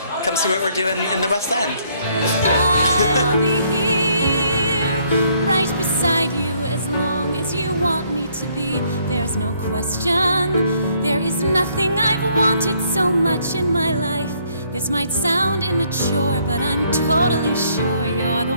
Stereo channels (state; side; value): inverted; both; correlation -0.67